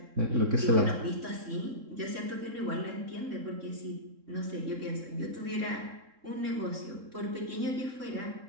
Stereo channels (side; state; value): left; late; 3.7 ms